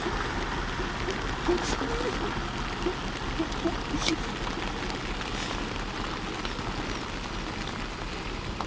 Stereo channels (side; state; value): both; identical; correlation 1.00